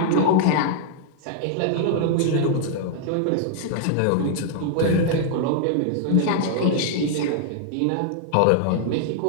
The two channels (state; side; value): different; both; correlation 0.00